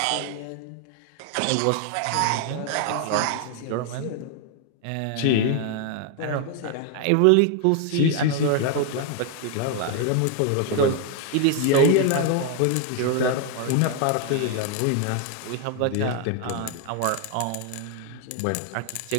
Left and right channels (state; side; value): different; both; correlation 0.00